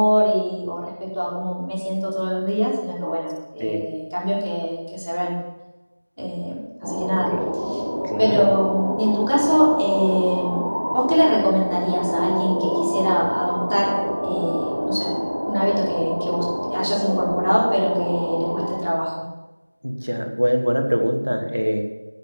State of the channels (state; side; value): inverted; both; correlation -1.00